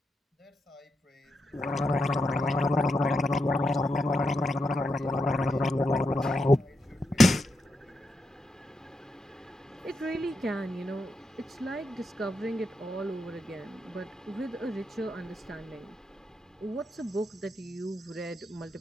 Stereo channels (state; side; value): normal; both; correlation 0.85